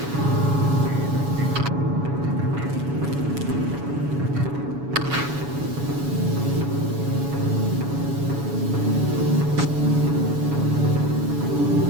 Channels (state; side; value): late; left; 7.1 ms